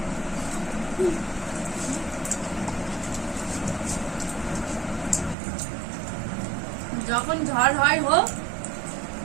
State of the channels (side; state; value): left; drops out; at 5.4 s